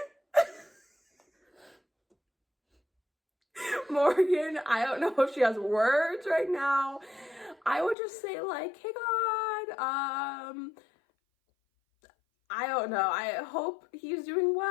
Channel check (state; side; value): drops out; right; at 8.0 s